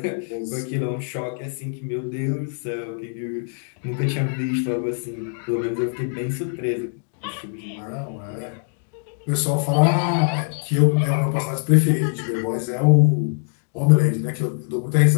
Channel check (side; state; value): right; silent; digital silence